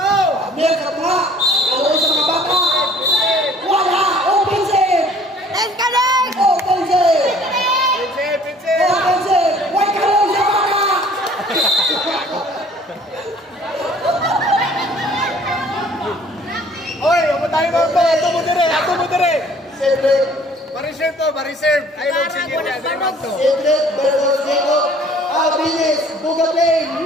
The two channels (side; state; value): both; normal; correlation 0.54